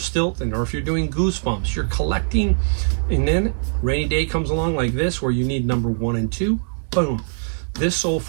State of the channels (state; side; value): silent; left; digital silence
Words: or if you're doing Goosebumps. You're collecting, and then rainy day comes along like this where you need number 1 and 2. Boom. This sold